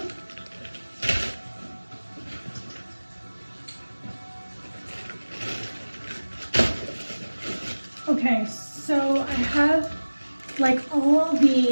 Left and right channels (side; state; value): both; inverted; correlation -1.00